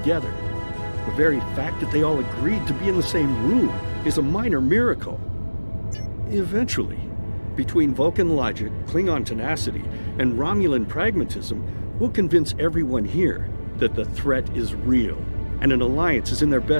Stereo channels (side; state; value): both; inverted; correlation -1.00